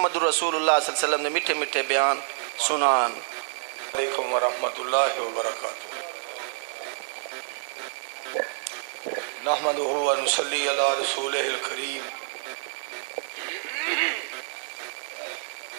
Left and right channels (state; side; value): silent; left; digital silence